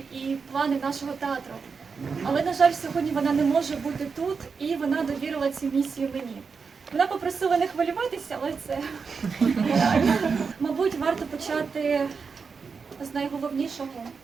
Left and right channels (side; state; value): left; quieter; 5.3 dB